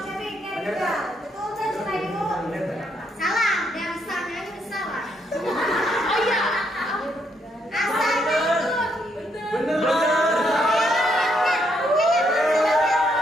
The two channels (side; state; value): both; normal; correlation 0.75